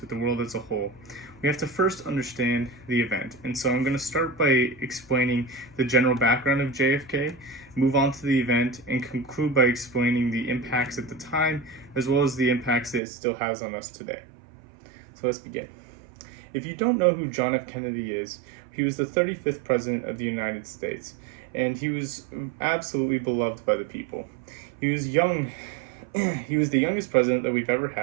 the world as a whole, we have to first understand the event. And so I'm going to start by explaining the general background of JFK, move on to the event, and conclude by explaining the impacts at the time as well as the impacts that it still has on us today. So let's begin. If you don't know who John F. Kennedy is, he was the 35th President of the United States, and he was absolutely beloved by the people. He was young. He was the youngest president that we've ever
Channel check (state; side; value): drops out; left; at 13.0 s